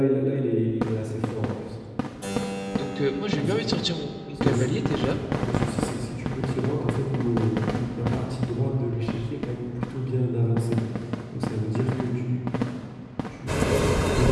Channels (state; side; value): identical; both; correlation 1.00